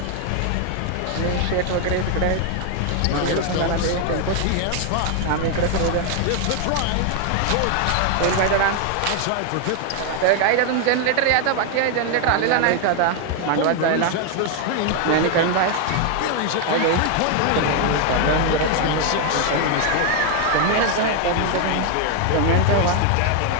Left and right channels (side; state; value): both; different; correlation 0.01